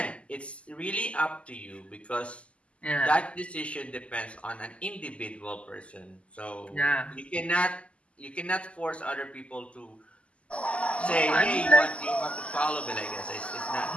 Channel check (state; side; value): late; right; 0.058 ms